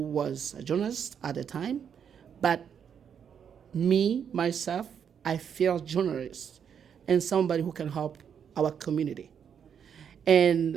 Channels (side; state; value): left; quieter; 7.8 dB